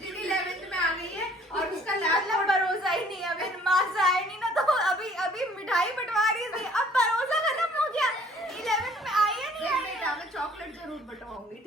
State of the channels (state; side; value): normal; both; correlation 0.57